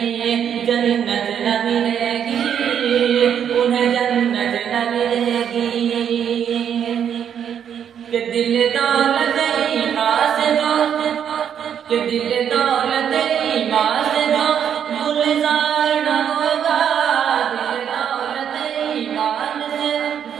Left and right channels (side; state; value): left; quieter; 8.6 dB